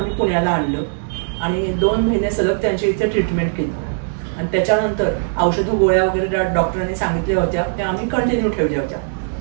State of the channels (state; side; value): silent; left; digital silence